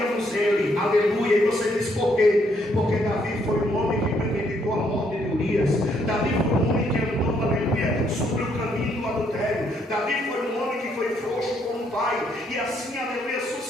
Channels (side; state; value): both; normal; correlation 0.71